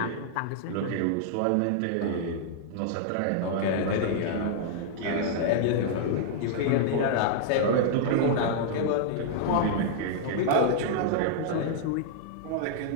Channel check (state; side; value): different; both; correlation -0.01